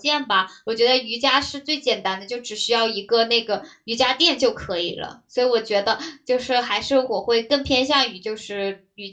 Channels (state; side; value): identical; both; correlation 1.00